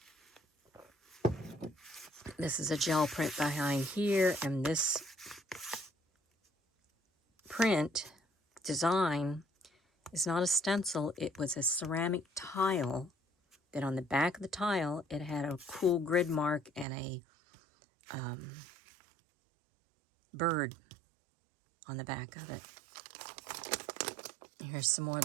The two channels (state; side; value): drops out; left; at 16.9 s